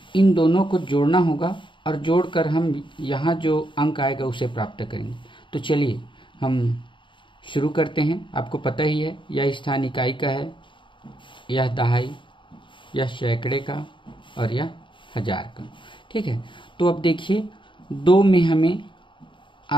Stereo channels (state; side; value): late; right; 0.24 ms